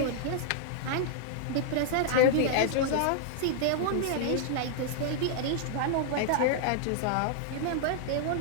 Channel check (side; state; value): both; different; correlation -0.01